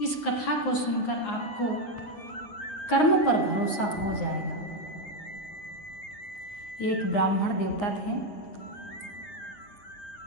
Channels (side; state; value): right; late; 9.5 ms